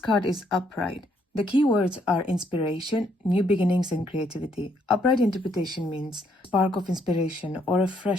is upright, the key words are inspiration, new beginnings, and creativity. Upright interpretation means spark of inspiration or a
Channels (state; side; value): normal; both; correlation 0.71